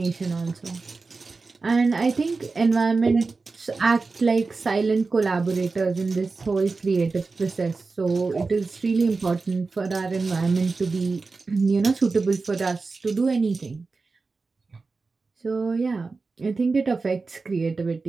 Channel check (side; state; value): left; quieter; 4.1 dB